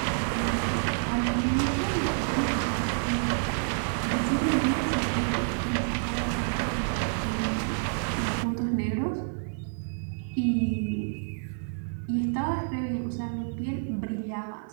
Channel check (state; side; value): silent; left; 57 dB below the other